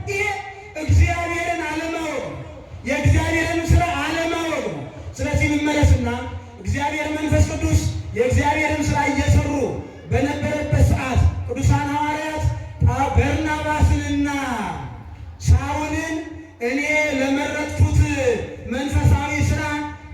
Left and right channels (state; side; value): identical; both; correlation 1.00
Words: ይሄ እግዚአብሔርን አለማወቅ ነው። የእግዚአብሔርን ስራ አለማወቅ ነው። ስለዚህ እንመለስና እግዚአብሔር መንፈስ ቅዱስ የእግዚአብሔርን ስራ እየሰሩ በነበረበት ሰዓት ቅዱሳን ሐዋርያት በርናባስንና ሳውልን እኔ ለመረጥኩት መንፈሳዊ ስራ